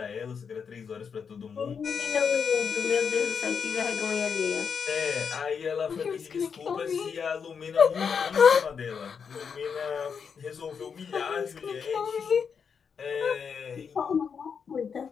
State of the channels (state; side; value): quieter; right; 6.4 dB